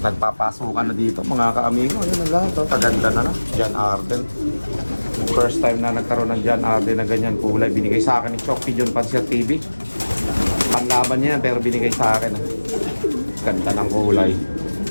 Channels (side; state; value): both; inverted; correlation -1.00